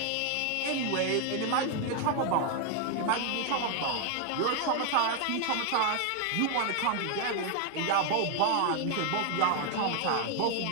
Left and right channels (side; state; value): both; different; correlation 0.00